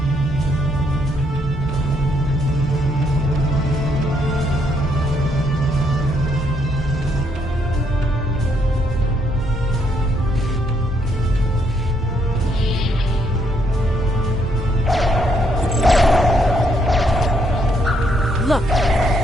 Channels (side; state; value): both; normal; correlation 0.73